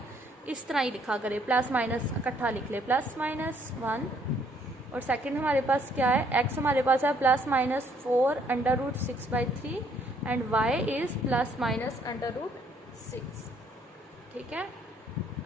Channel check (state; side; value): normal; both; correlation 0.67